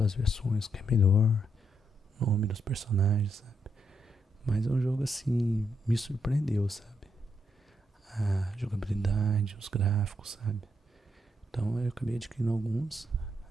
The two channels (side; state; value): both; normal; correlation 0.78